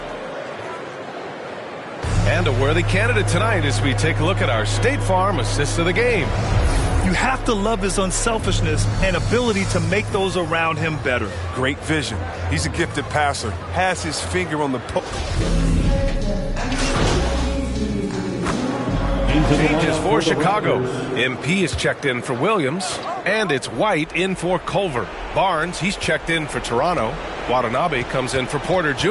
And a worthy candidate tonight as we take a look at our State Farm assist of the game. You have to love his unselfishness and ability to make those around him better. Great vision. He's a gifted passer. Has his finger on the post. Changes for Chicago. MP is checked in for Williams, and it's White in for Culver. Barnes, he's checked in for Toronto. Watanabe comes in for Porter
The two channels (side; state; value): both; identical; correlation 1.00